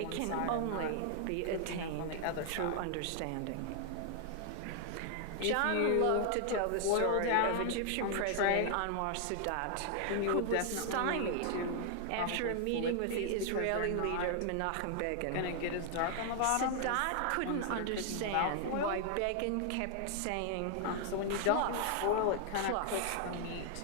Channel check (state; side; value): different; both; correlation 0.00